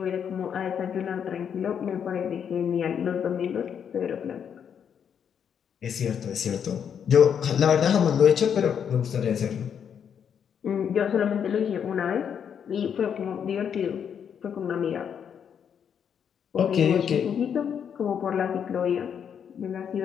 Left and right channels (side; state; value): right; quieter; 7.9 dB